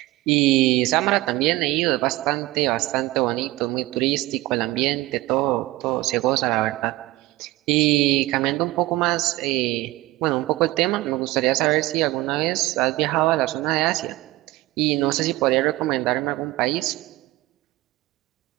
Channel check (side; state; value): left; quieter; 18.6 dB